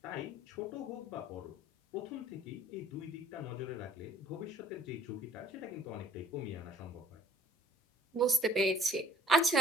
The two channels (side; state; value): both; normal; correlation 0.56